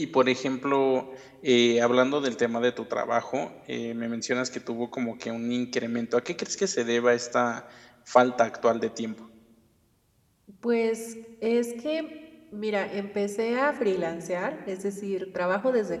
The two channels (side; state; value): both; identical; correlation 1.00